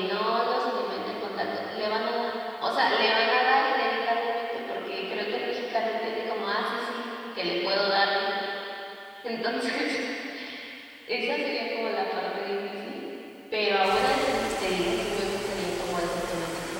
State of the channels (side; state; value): both; identical; correlation 1.00